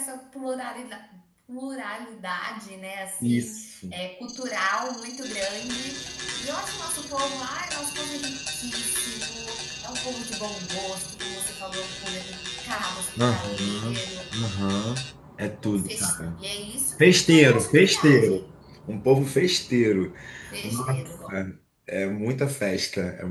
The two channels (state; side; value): identical; both; correlation 1.00